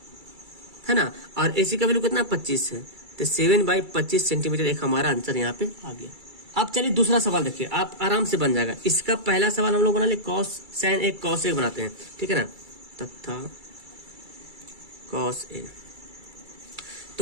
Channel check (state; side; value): late; left; 2.3 ms